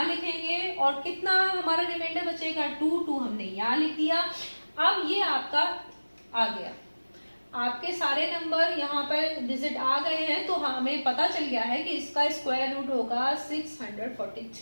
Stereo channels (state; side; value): inverted; both; correlation -1.00